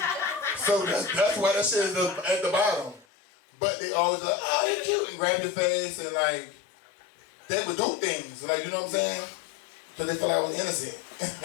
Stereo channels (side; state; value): right; drops out; at 3.1 s